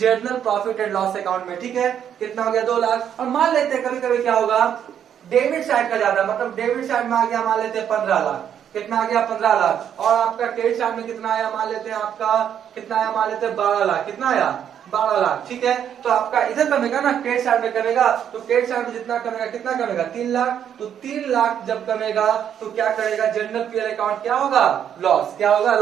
profit and loss account में, ठीक है। कितना हो गया, 2 लाख। और मान लेते हैं कभी कभी क्या होगा, डेबिट साइड का ज्यादा, मतलब डेबिट साइड में आ गया मान लेते हैं 15 लाख। कितना आ गया, 15 लाख। और आपका क्रेडिट साइड में कितना आया, मान लेते हैं आपका कितना आया, मान लेते हैं 12 लाख। कितना आया, 12 लाख, ठीक है। तो आपका इधर कमेगा ना, क्रेडिट साइड में कमेगा, तो क्रेडिट साइड में जितना कमेगा, कितना कमेगा, 3 लाख। तो 3 लाख जब कमेगा तो क्या करेगा, जनरल पीएल अकाउंट क्या होगा, लॉस। क्या होगा,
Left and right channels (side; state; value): left; quieter; 9.1 dB